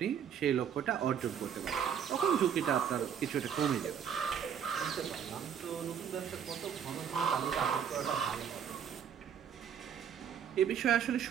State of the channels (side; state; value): left; quieter; 8.2 dB